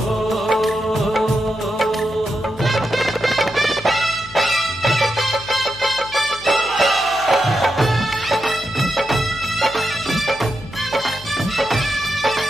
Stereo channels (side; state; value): left; noise; hum, 19 dB below the sound